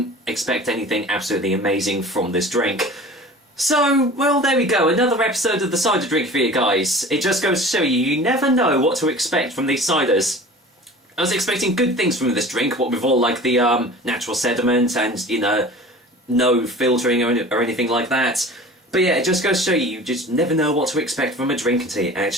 expect anything absolutely amazing from this drink. So, there we go, another episode of the cider drink for you guys. It just goes to show you, you never know what to expect from these ciders. I was expecting good things from this drink, what with all like the natural sediment and, no filtering or anything like that. But yeah, it just goes to show you, you just never know what to expect from a drink until you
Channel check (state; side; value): normal; both; correlation 0.41